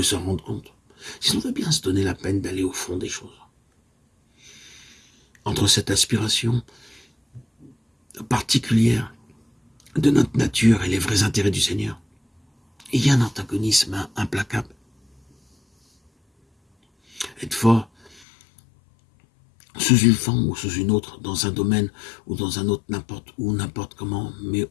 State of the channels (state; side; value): drops out; right; at 18.2 s